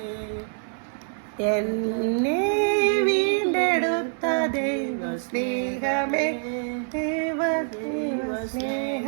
എന്നെ വീണ്ടെടുത്ത ദൈവസ്നേഹമേ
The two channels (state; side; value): silent; left; 61 dB below the other